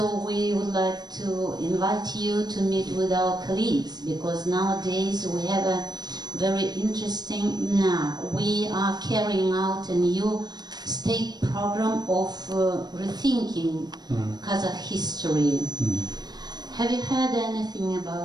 we would like to invite you to meet with our colleagues, because nowadays we have a very interesting, we are carrying out a new state program of rethinking Kazakh history. Have you heard anything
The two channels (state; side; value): late; left; 0.20 ms